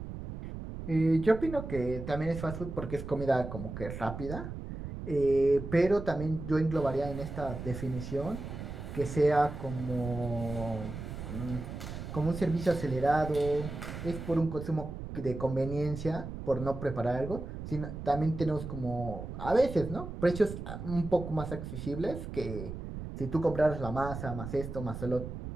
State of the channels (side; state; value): right; noise; rumble, 8 dB below the sound